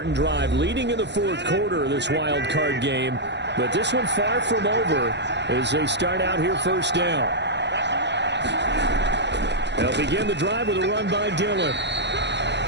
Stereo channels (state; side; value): late; left; 0.51 ms